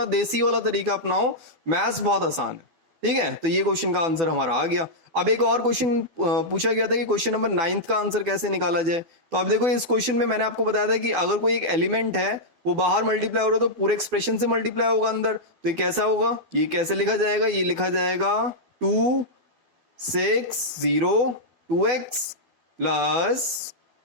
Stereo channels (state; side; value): late; left; 12 ms